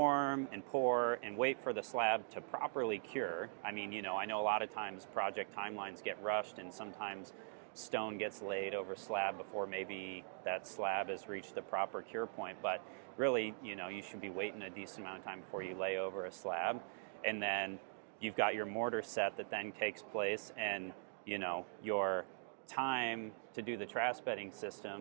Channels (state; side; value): silent; left; digital silence